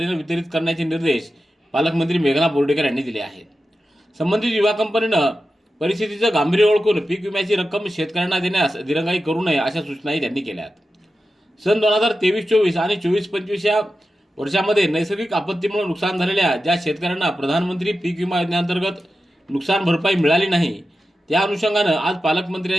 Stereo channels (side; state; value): both; normal; correlation 0.92